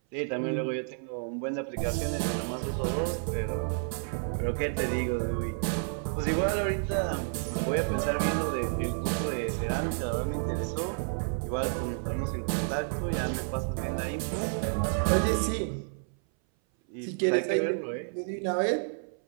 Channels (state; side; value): silent; left; 58 dB below the other